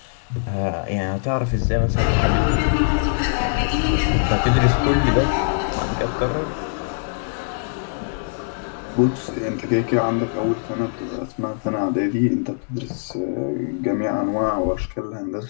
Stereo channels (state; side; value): silent; right; digital silence